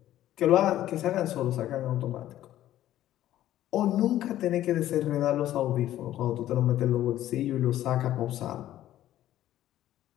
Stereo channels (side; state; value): right; quieter; 13.2 dB